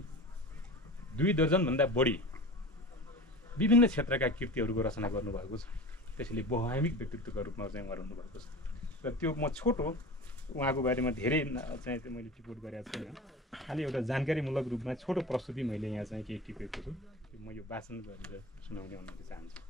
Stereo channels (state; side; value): normal; both; correlation 0.34